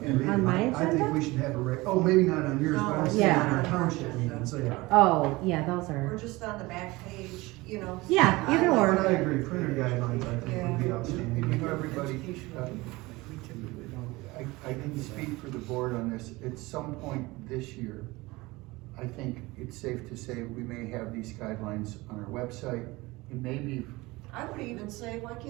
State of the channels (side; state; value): left; quieter; 21.5 dB